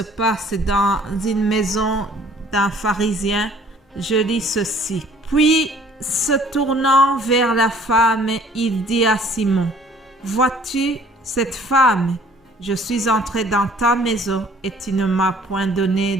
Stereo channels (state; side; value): normal; both; correlation 0.55